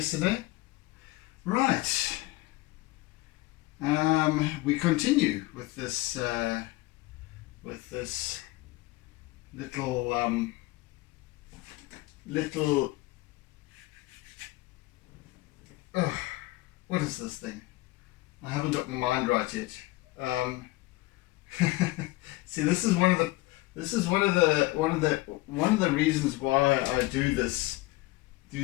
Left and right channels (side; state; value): right; quieter; 19.8 dB